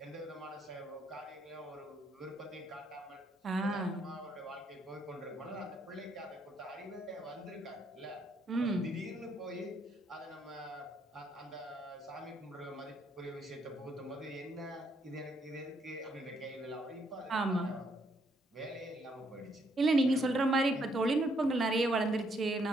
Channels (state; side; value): normal; both; correlation 0.72